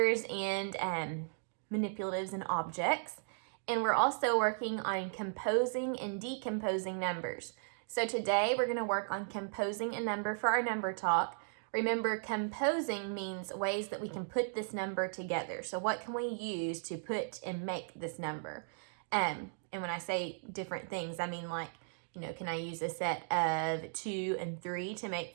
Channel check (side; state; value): left; silent; digital silence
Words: and manipulatives and objects. And we're also working on composing and decomposing numbers. So today we're going to work on composing a number for our number talk. Remember, composing means ways that we can put this number together. So what can we use to put and make this number? And when I say different things, I mean like, can I use a set of 2 and 3 to make